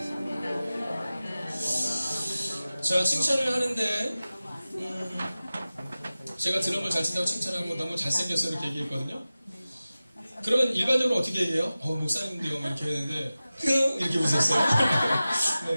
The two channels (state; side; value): inverted; both; correlation -0.96